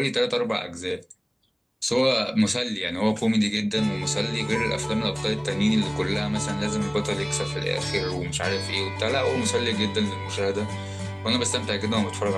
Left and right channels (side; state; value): both; identical; correlation 1.00